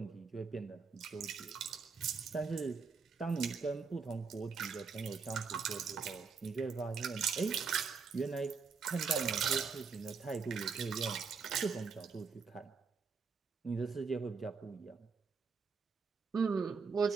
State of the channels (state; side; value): quieter; left; 5.3 dB